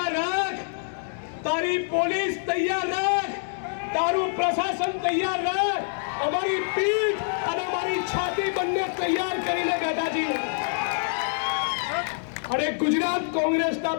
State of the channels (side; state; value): right; silent; digital silence